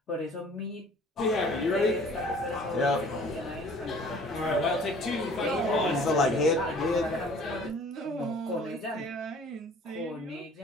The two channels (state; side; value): normal; both; correlation 0.51